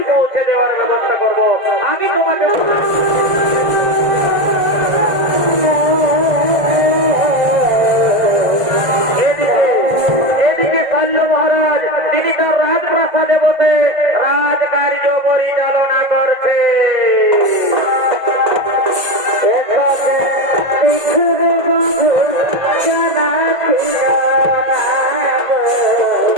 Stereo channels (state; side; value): late; left; 1.5 ms